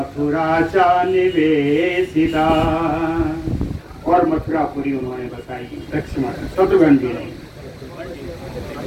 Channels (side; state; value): both; identical; correlation 1.00